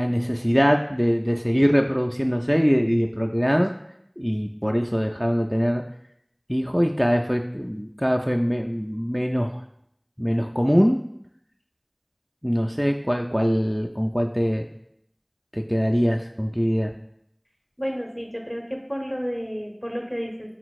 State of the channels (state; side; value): identical; both; correlation 1.00